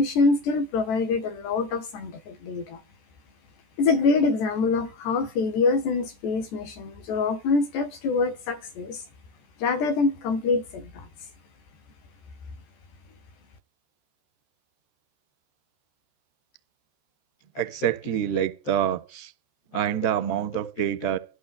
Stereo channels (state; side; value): late; right; 14 ms